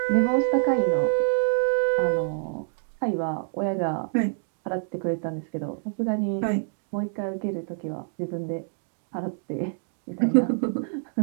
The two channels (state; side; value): silent; left; digital silence